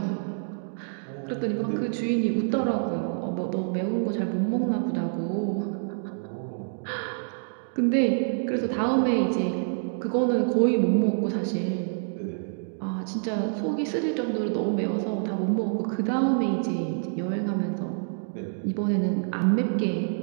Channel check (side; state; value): left; silent; digital silence